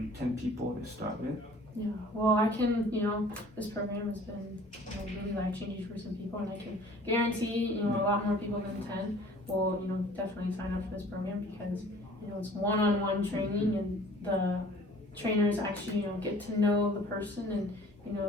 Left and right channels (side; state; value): both; normal; correlation 0.50